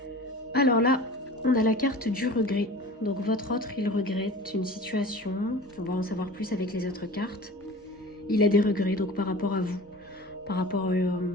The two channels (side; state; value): both; normal; correlation 0.39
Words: Alors là, on a la carte du regret. Donc votre autre, il regrette une situation. On va en savoir plus avec les autres cartes. Il a des regrets donc par rapport à vous, par rapport à